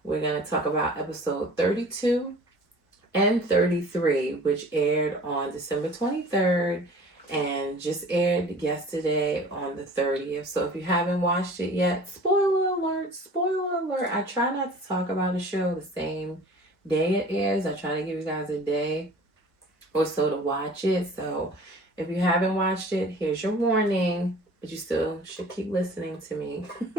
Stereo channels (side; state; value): both; normal; correlation 0.45